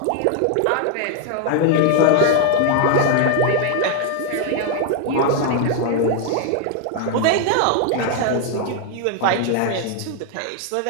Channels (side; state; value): both; different; correlation 0.00